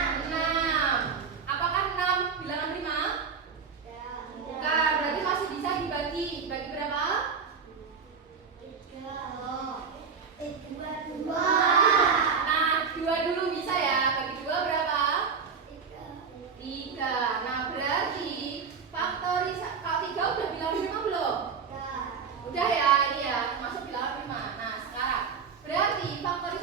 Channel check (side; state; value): left; quieter; 5.9 dB